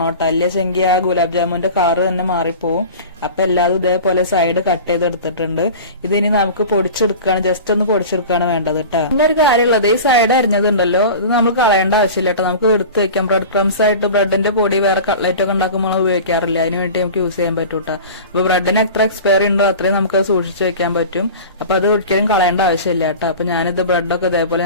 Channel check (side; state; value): both; inverted; correlation -0.35